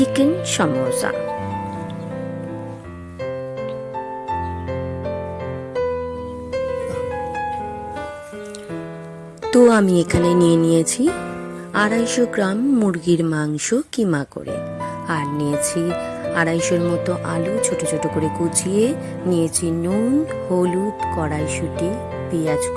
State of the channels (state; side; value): identical; both; correlation 1.00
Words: সমোসা। তো আমি এখানে নিয়ে নিয়েছি 250 গ্রাম মুরগির মাংস কিমা করে, আর নিয়েছি 250 মতো আলু ছোট ছোট করে কুচিয়ে নিয়েছি, নুন, হলুদ, কড়াইশুঁটি, পেঁয়াজ